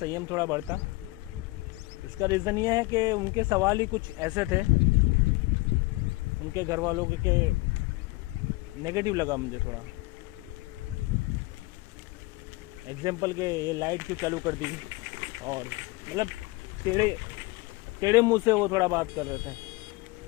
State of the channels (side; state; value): right; quieter; 22.7 dB